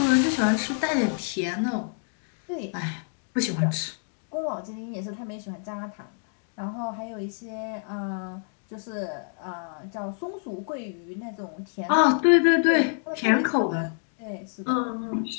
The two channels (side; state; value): right; silent; 60 dB below the other